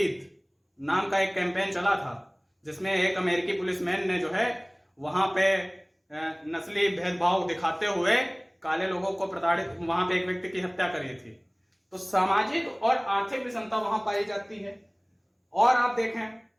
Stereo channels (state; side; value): identical; both; correlation 1.00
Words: नाम का एक कैंपेन चला था, जिसमें एक अमेरिकी पुलिसमैन ने जो है वहां पे नस्ली भेदभाव दिखाते हुए काले लोगों को प्रताड़ित, वहां पे एक व्यक्ति की हत्या करी थी। तो सामाजिक और आर्थिक विषमता वहां पाई जाती है। और आप देखें